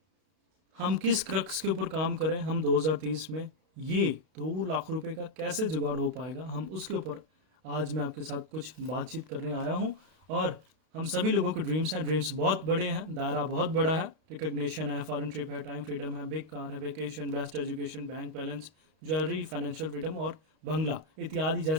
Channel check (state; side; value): late; left; 32 ms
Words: हम किस क्रक्स के ऊपर काम करें, हम 2030 में ये 2 लाख रुपए का कैसे जुगाड़ हो पाएगा, हम उसके ऊपर आज मैं आपके साथ कुछ बातचीत करने आया हूँ। और हम सभी लोगों के ड्रीम्स हैं, ड्रीम्स बहुत बड़े हैं, दायरा बहुत बड़ा है। रिकग्निशन है, फॉरेन ट्रिप है, टाइम फ्रीडम है, बिग कार है, vacation, best education, bank balance, jewellery, financial freedom और बंगला इत्यादि